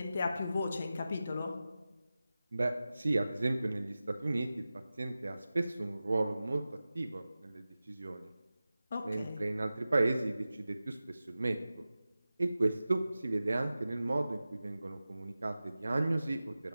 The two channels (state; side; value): inverted; both; correlation -0.95